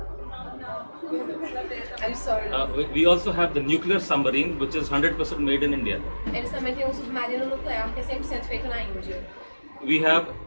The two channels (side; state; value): both; inverted; correlation -1.00